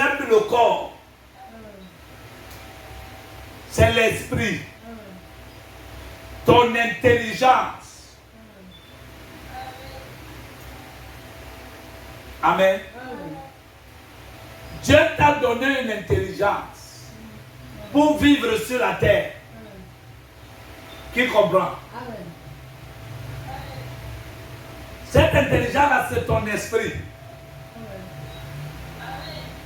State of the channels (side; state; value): both; identical; correlation 1.00